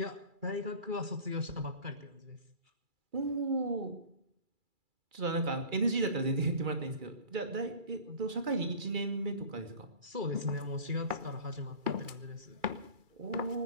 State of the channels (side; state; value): left; late; 2.3 ms